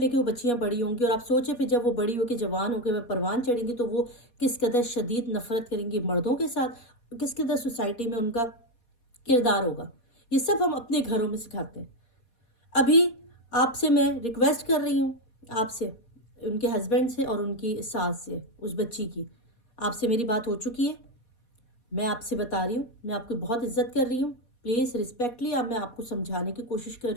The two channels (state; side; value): late; right; 4.2 ms